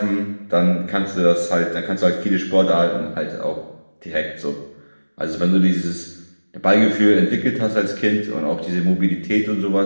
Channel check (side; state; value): both; inverted; correlation -1.00